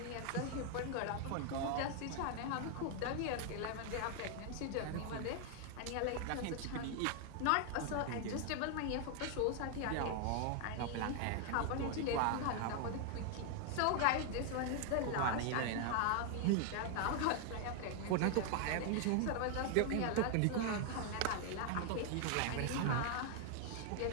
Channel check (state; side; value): different; both; correlation 0.00